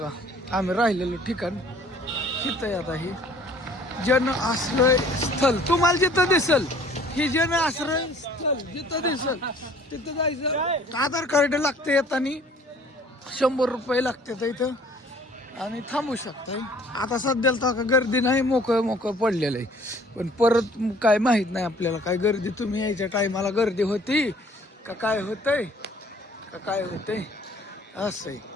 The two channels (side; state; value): both; normal; correlation 0.55